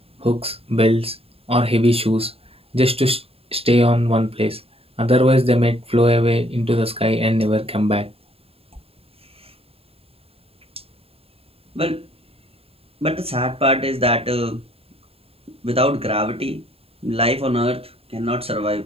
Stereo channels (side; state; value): left; late; 0.28 ms